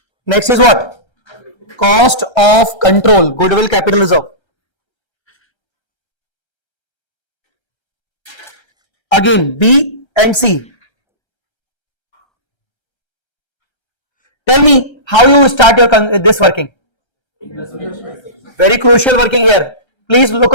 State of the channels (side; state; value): right; late; 1.3 ms